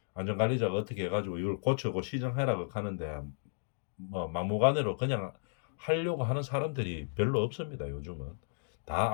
안전관리자가 어떻게 해가지고 이걸 고치고 시정해라고 하는데 뭐 막무가내로 그냥 하려고 하는 사람들이 별로 없습니다. 요즘은 다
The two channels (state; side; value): silent; right; digital silence